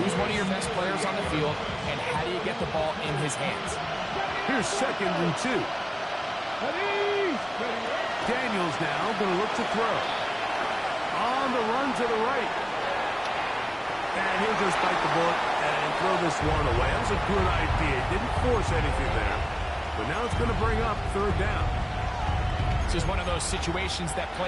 one of your best players on the field, and how do you get the ball in his hands? Here's 2nd and 2. Daniels now going to look to throw. On the run to the right. And he'll just bite the bullet and throw this one away. That was a good idea. Didn't force anything there. But now it's going to bring up 3rd down. This is one of those situations that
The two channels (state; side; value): identical; both; correlation 1.00